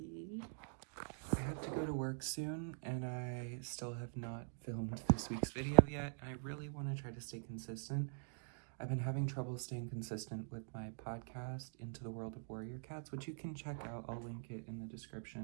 I have to go to work soon and I still have not filmed this week's video yet. I really want to try to stay consistent. I've been having trouble staying consistent with my podcast, Into the World of Warrior Cats, which you can check out. I'll link it in the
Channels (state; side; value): silent; left; digital silence